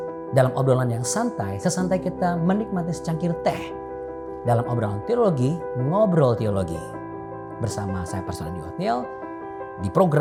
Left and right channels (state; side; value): identical; both; correlation 1.00